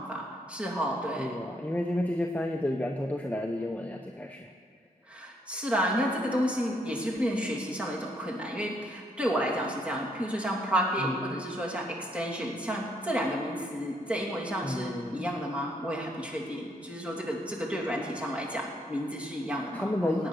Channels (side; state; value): both; normal; correlation 0.72